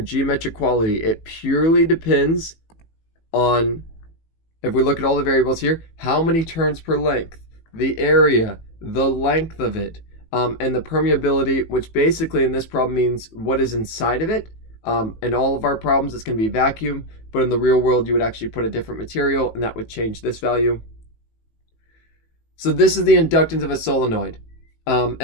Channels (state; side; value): late; right; 18 ms